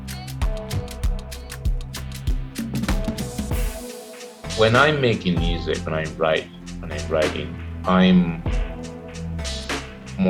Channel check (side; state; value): both; identical; correlation 1.00